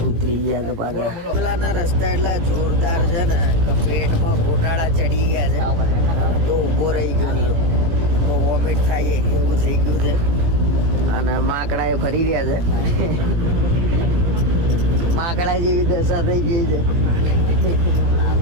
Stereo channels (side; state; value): left; late; 18 ms